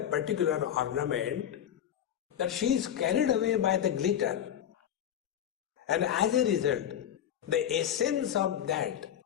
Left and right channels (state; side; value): quieter; right; 10.1 dB